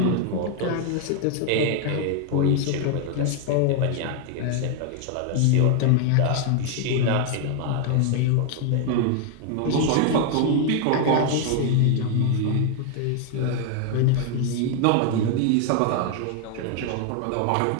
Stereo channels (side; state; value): both; different; correlation 0.00